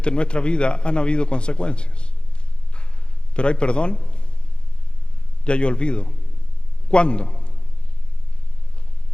en nuestra vida han habido consecuencias. Pero hay perdón y hay olvido. ¿Cuándo?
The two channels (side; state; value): right; late; 0.052 ms